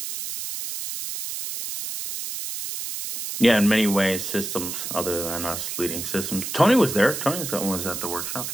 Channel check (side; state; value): right; noise; hiss, 5 dB below the sound